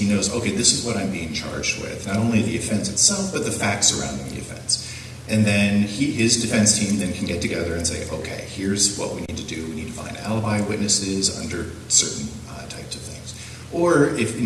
knows, okay, this is what I'm being charged with. Not only the offense itself, but the facts surrounding the offense. And then his defense team then can get together and say, okay, here's what we need to do. We need to find alibi witnesses under certain types of things. Or if in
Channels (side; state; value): both; identical; correlation 1.00